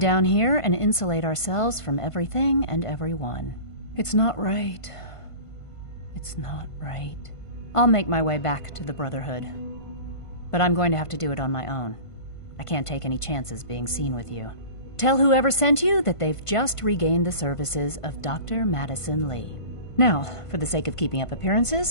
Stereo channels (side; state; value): right; late; 1.5 ms